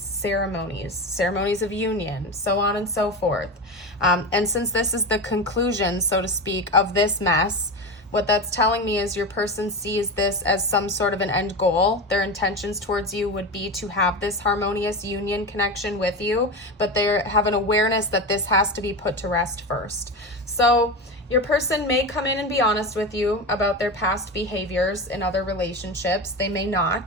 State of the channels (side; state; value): both; normal; correlation 0.22